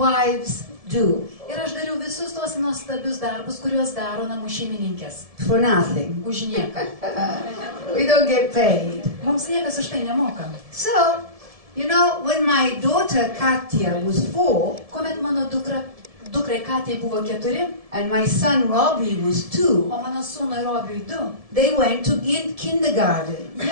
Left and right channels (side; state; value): left; late; 1.7 ms